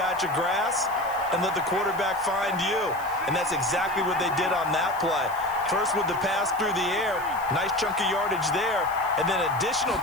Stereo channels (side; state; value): left; noise; hiss, 20 dB below the sound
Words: of grass and let the quarterback find you. And that's exactly what they did on that play. First with the pass through the air, nice chunk of yardage there, and then additional